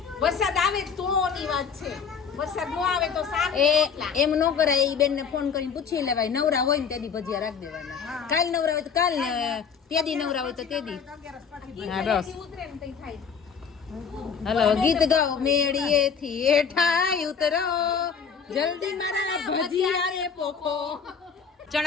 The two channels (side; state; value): right; quieter; 6.4 dB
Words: વરસાદ આવે તો ની વાત છે. વરસાદ ન આવે તો શાક એ એમ ન કરાય. એ બેનને ફોન કરીને પૂછી લેવાય. નવરા હોય ને તેદી ભજીયા રાખી દેવાના. કાલ નવરા હોય તો કાલ ને તેદી નવરા હોય તો તેદી. હા બસ. ઉતરે ને તઈ થાય. હલો, ગીત ગાઓ. મેળીએથી હેઠાય ઉતરો, જલ્દી મારા ભજીયા રે પોખો.